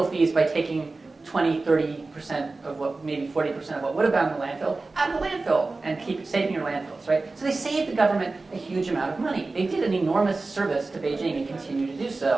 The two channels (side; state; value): left; quieter; 3.5 dB